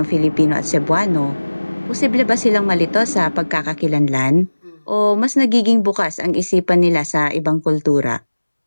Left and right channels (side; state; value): both; inverted; correlation -1.00